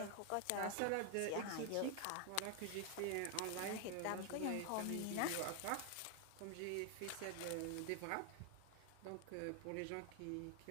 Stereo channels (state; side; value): different; both; correlation 0.00